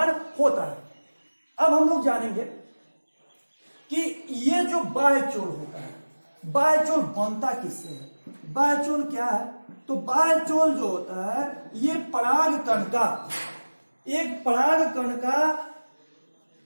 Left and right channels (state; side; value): inverted; both; correlation -1.00